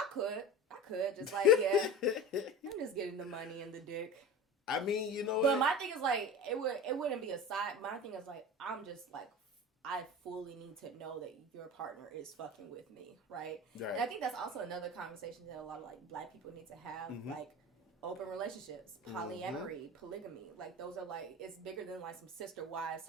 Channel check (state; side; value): normal; both; correlation 0.32